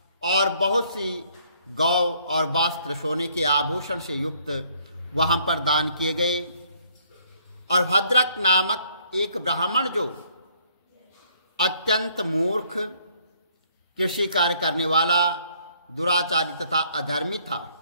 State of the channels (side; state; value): both; inverted; correlation -0.64